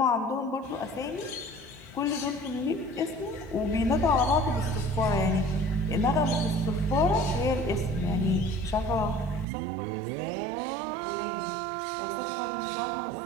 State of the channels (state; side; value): drops out; left; at 9.5 s